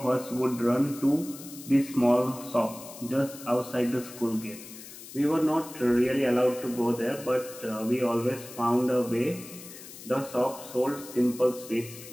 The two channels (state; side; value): noise; left; hiss, 15 dB below the sound